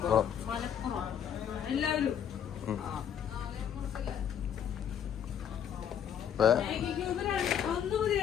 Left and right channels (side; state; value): right; quieter; 8.9 dB